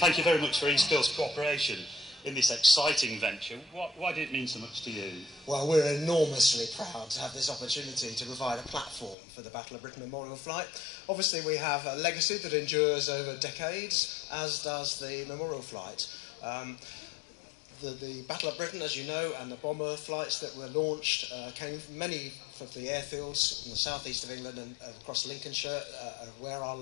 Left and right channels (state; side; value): drops out; right; at 9.2 s